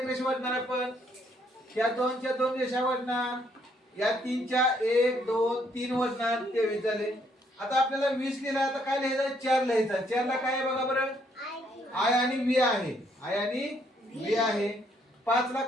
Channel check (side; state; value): both; normal; correlation 0.69